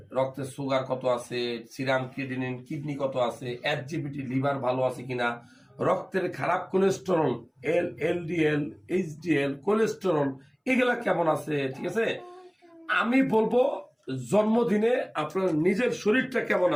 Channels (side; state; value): both; identical; correlation 1.00